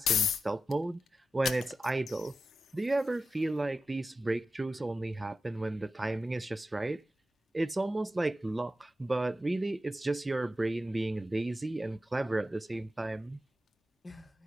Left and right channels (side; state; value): both; normal; correlation 0.92